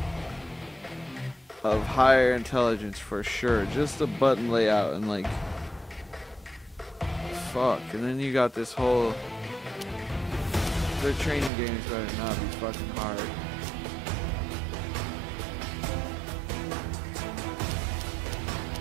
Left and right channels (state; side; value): drops out; left; at 11.5 s